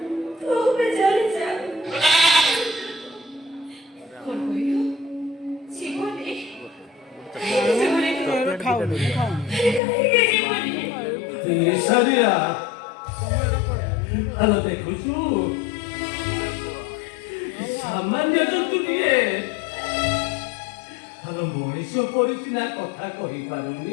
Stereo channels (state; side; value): drops out; right; at 9.8 s